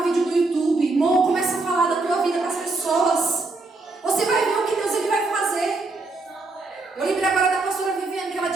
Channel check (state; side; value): quieter; left; 3.4 dB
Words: vídeo no YouTube, amor, começa a falar da tua vida para as pessoas. Você vai ver o que Deus ele vai fazer. Eu lembrei agora da pastora Viviane, que ela